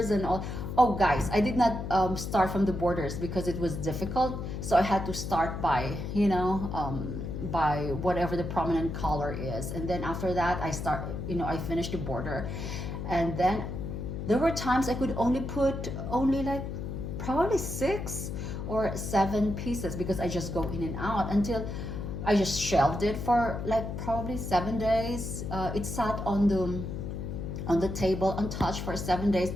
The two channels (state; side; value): noise; left; hum, 5 dB below the sound